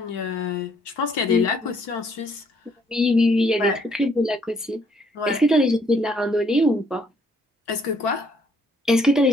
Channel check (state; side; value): normal; both; correlation 0.66